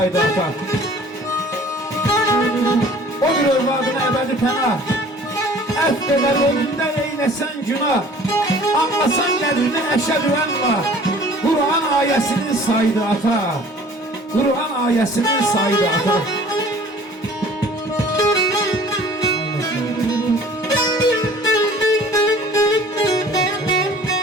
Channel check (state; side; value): normal; both; correlation 0.49